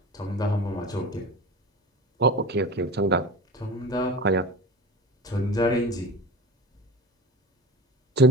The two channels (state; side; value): normal; both; correlation 0.33